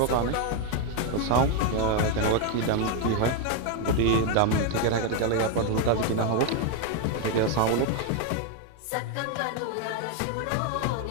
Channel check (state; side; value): different; both; correlation 0.01